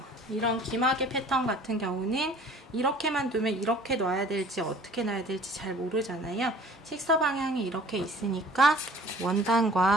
이런 기마개 패턴 같은 경우는 이렇게만 두면 이렇게 놔야 될지 어떻게 놔야 될지 잘 모르잖아요. 식서 방향이 이렇게 있으니까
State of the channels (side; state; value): both; normal; correlation 0.50